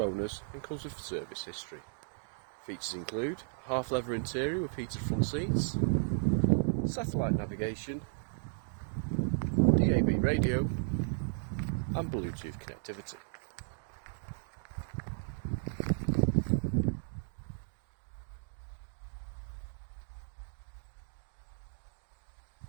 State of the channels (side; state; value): left; silent; digital silence